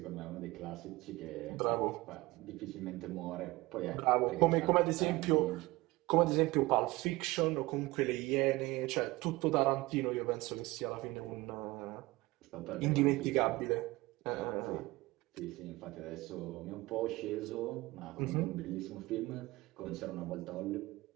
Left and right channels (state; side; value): quieter; left; 20.6 dB